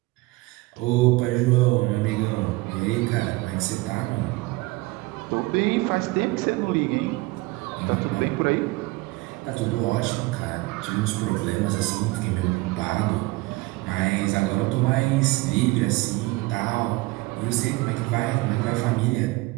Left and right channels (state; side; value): quieter; left; 21.7 dB